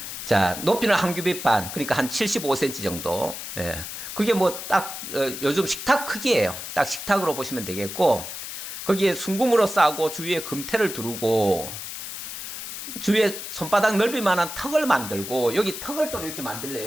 자, 높이는 1규빗 반, 그러니까 한 75cm 정도. 그게 뭐 딱 요즘 식탁 크기예요. 딱 식탁으로 보시면 되겠고, 거기에 순금으로 싸고 주위에 금태를 두르고 주위에 손바닥 넓이 만한 턱을 만들고, 여기 턱을 또 이렇게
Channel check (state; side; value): noise; left; hiss, 8 dB below the sound